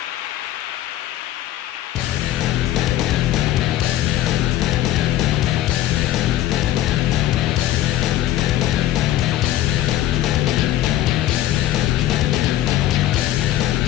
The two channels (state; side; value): quieter; right; 13.4 dB